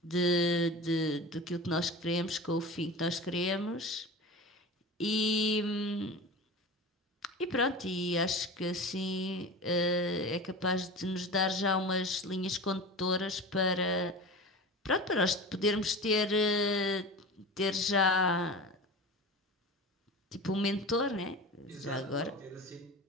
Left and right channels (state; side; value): normal; both; correlation 0.32